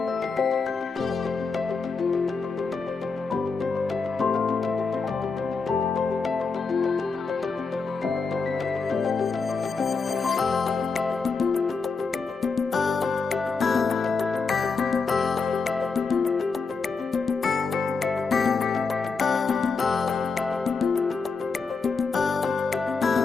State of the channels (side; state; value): right; quieter; 4.6 dB